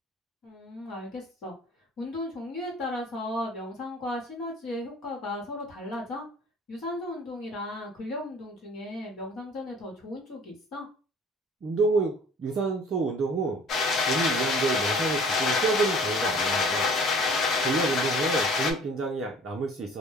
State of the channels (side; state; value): both; normal; correlation 0.50